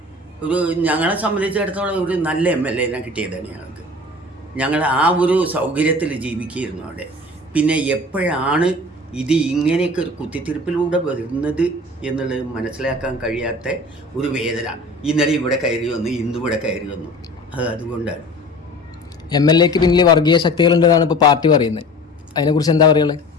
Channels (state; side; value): normal; both; correlation 0.41